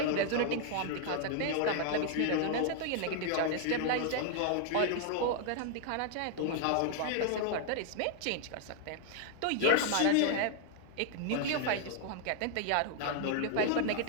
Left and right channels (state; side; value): different; both; correlation 0.00